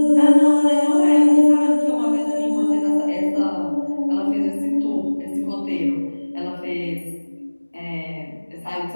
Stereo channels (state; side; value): inverted; both; correlation -1.00